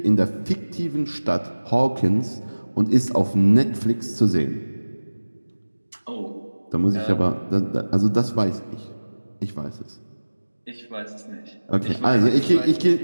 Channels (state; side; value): inverted; both; correlation -1.00